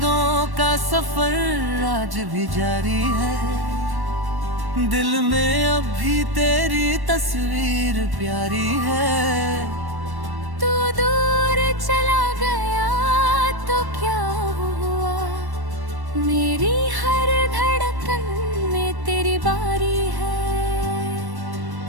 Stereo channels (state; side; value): late; left; 1.1 ms